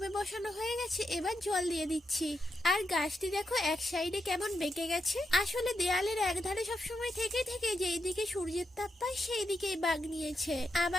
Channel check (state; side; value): normal; both; correlation 0.84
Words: বসানো হয়ে গেছে, এবার জল দিয়ে দিচ্ছি। আর গাছটি দেখো এক সাইডে কেমন বেঁকে গেছে। আসলে দেয়ালের এক ধারে সবসময় থেকে থেকে যেই দিকে সূর্যের তাপ পায় সেই দিকেই বাগ নিয়েছে।